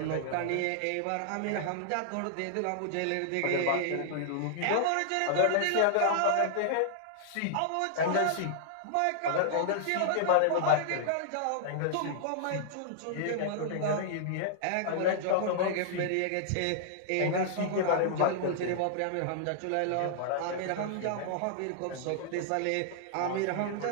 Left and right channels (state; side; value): different; both; correlation -0.01